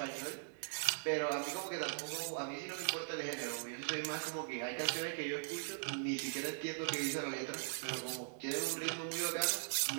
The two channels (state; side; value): silent; left; digital silence